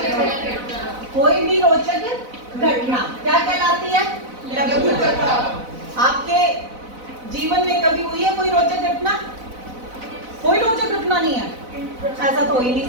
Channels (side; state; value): left; late; 4.0 ms